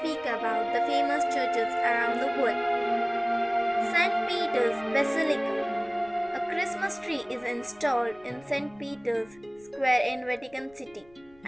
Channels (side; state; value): left; noise; rumble, 28 dB below the sound